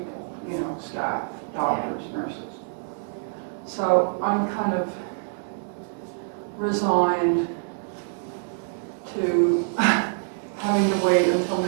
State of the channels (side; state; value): left; silent; digital silence